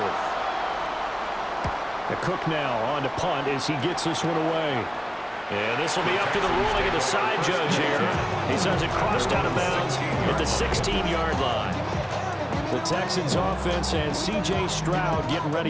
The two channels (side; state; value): both; identical; correlation 1.00